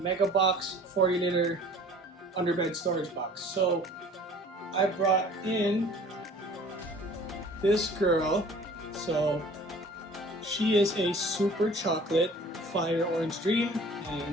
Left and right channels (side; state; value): both; normal; correlation 0.48